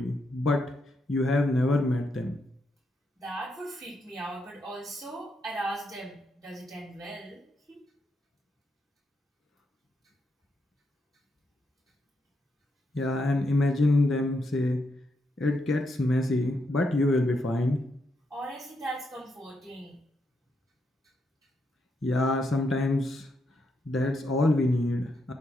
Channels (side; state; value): both; normal; correlation 0.81